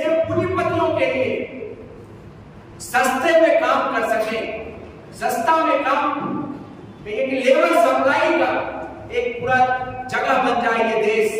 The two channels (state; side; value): identical; both; correlation 1.00